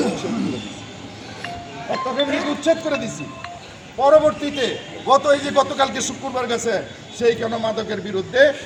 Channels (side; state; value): both; identical; correlation 1.00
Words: উচ্ছেদ করে দিছি, একটা ফ্যামিলিকে উচ্ছেদ করে দিছি। পরবর্তীতে গতকালকে শুক্রবার গেছে, সেইখানে মাদকের বিরুদ্ধে